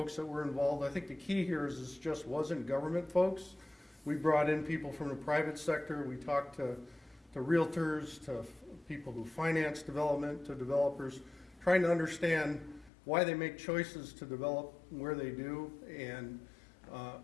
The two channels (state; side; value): drops out; right; at 12.9 s